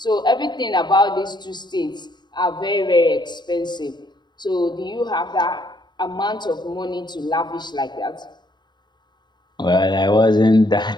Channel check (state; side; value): late; right; 0.21 ms